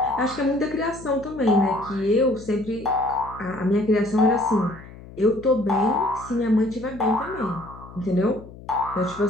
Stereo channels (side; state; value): left; noise; hum, 18 dB below the sound